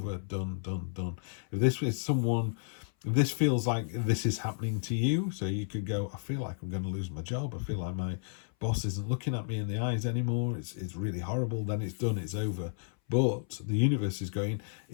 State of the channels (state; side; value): silent; right; 56 dB below the other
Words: done. If this is someone, if this feels like this is happening to you, so you could go, I feel like I'm going to lose my job. I feel like my boss isn't looking at me in the eyes anymore. It's really horrible. Then it's done. It's over. But the universe is going,